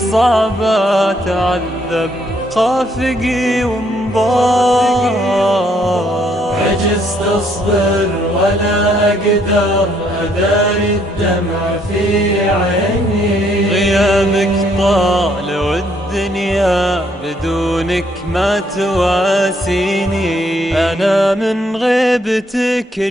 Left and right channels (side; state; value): both; normal; correlation 0.69